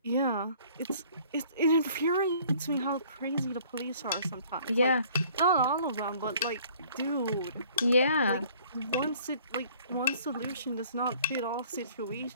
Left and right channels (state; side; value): inverted; both; correlation -0.55